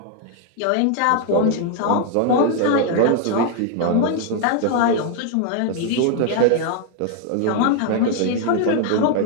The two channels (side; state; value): both; different; correlation 0.00